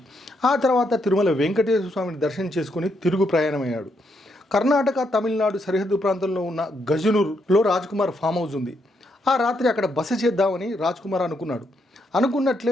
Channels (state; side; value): normal; both; correlation 0.77